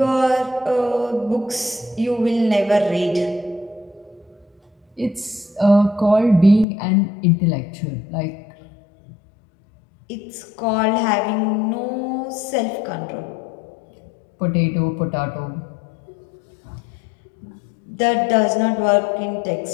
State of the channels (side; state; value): right; drops out; at 6.7 s